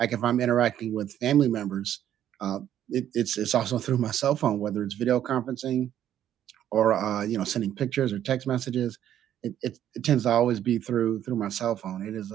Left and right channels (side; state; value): left; quieter; 10.9 dB